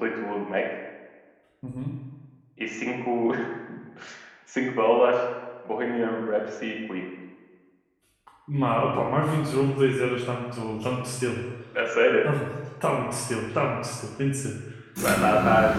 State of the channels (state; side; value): identical; both; correlation 1.00